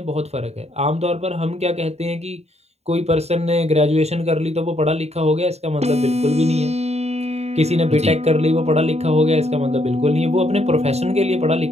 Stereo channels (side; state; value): left; late; 0.31 ms